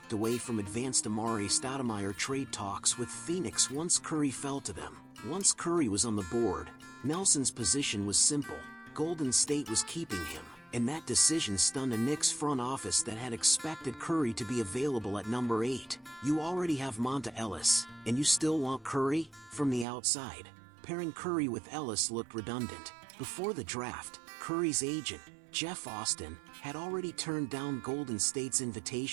away from advanced Amar'e Stoudemire trade talks with Phoenix once Curry fell to them. Once Curry was on the board, Nelson's position was simple: Golden State was keeping him. And that decision stunned a Knicks front office that had expected Curry to be available at number 8. You already have Monta Ellis, and you still want Curry? From the outside, pairing Curry with Ellis looked redundant. Before the draft, Curry's agent, Jeff Austin, had already turned down Golden State's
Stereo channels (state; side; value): drops out; left; at 19.9 s